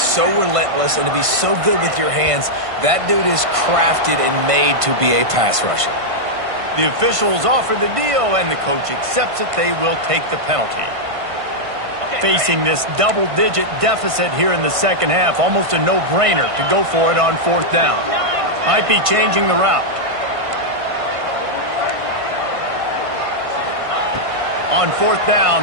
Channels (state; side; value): late; left; 1.5 ms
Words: relentless and to be so good with your hands, that dude is crafted and made to be a pass rusher. The officials offer the deal, and the coach accepts it. They will take the penalty. Facing this double-digit deficit here in the second half, almost a no-brainer to go for it on fourth down. Might be changing the route. On fourth